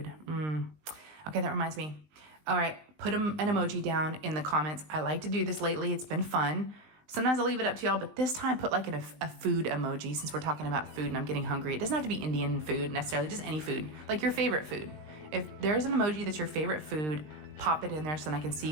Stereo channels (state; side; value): late; left; 19 ms